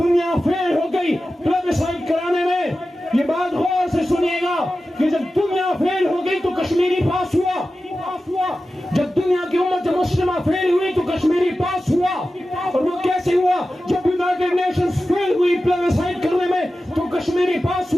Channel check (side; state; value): both; normal; correlation 0.94